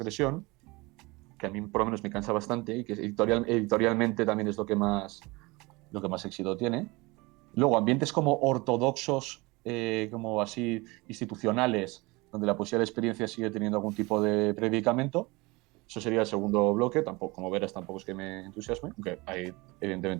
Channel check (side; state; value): left; quieter; 24.0 dB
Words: que a mí por lo menos me cansa bastante y que editorialmente también es lo que más éxito tiene. Luego, ambientes como ortodoxos, como así institucionales, donde la poesía de la experiencia sigue teniendo algún tipo de predicamento. Eso sería el segundo bloque. Tampoco, como verás, tampoco es que me entusiasme, aunque hay